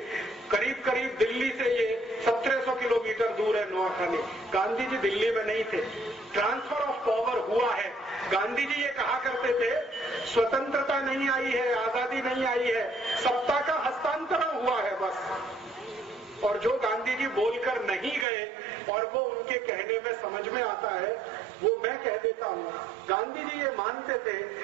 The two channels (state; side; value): drops out; left; at 18.2 s